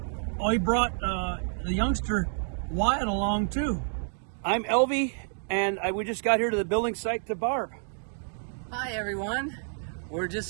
Oh, he brought the youngster Wyatt along too. I'm Elvie, and we just got here to the building site to Barb. Hi everyone. We're just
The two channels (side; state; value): left; silent; digital silence